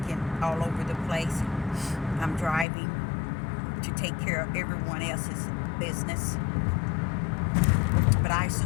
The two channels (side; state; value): right; drops out; at 2.7 s